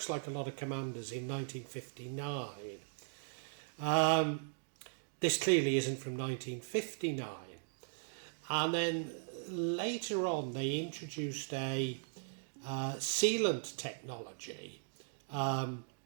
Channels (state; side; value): silent; left; digital silence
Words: like a lot of Commanders in 1959. This clearly isn't from 1959. And then later on, they introduced a sealant technology